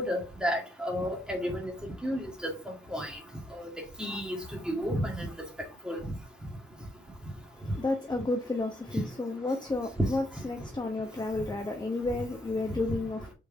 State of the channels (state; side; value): normal; both; correlation 0.76